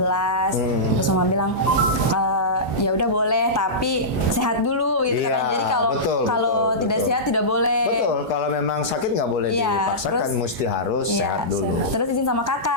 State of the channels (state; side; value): normal; both; correlation -0.16